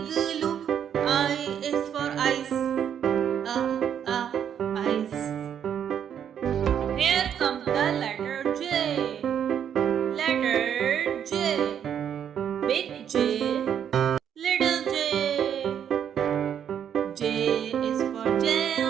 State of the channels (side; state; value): left; quieter; 8.9 dB